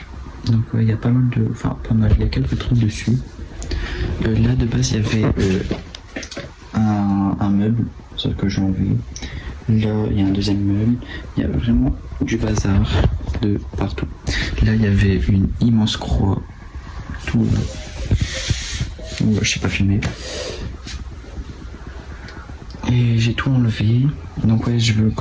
Donc ouais, il y a pas mal de... Enfin, pas mal, il y a quelques trucs dessus. Là, de base, il y avait un meuble, sauf que j'ai enlevé. Là, il y a un deuxième meuble. Il y a vraiment du bazar de partout. Là, il y avait une immense croix. Tout là. Ouais, je sais pas filmer. Et j'ai tout enlevé. Donc ouais,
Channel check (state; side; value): identical; both; correlation 1.00